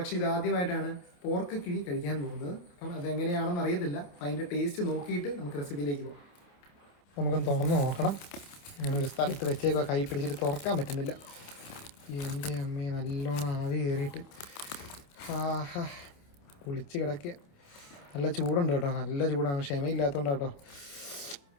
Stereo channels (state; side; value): late; right; 28 ms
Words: ഇത് ആദ്യമായിട്ടാണ് പോർക്ക് കിഴി കഴിക്കാൻ പോകുന്നത്. അപ്പം അതെങ്ങനെയാണെന്ന് അറിയത്തില്ല. അപ്പം അതിൻ്റെ ടേസ്റ്റ് നോക്കിയിട്ട് നമുക്ക് റെസിപ്പിയിലേക്ക് പോകാം. നമുക്കൊന്ന് തുറന്ന് നോക്കണം. ഞാനൊരു സ്ഥലത്ത് വെച്ചേക്കുക, കൈ പിടിച്ചിട്ട് തുറക്കാൻ പറ്റുന്നില്ല. എൻ്റെ അമ്മയെ നല്ലോണം ആവി കയറിയിട്ട് ആഹാ കുളിച്ച് കിടക്കുക. നല്ല ചൂടുണ്ട് കേട്ടോ, നല്ല ചൂടാണ്. ക്ഷമയില്ലാത്തതുകൊണ്ട് കേട്ടോ.